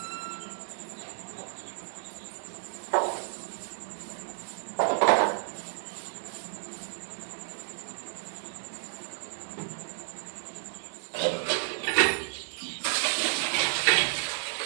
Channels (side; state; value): left; silent; digital silence